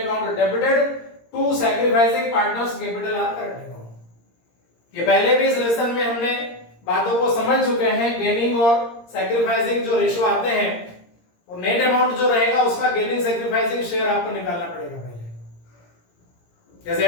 debited to sacrificing partners capital और करंट अकाउंट। ये पहले भी इस लेसन में हमने बातों को समझ चुके हैं। गेनिंग और सैक्रिफाइसिंग जो रेशियो आते हैं, और नेट अमाउंट जो रहेगा उसका गेनिंग सैक्रिफाइसिंग शेयर आपको निकालना पड़ेगा पहले। जैसे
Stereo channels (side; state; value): right; late; 17 ms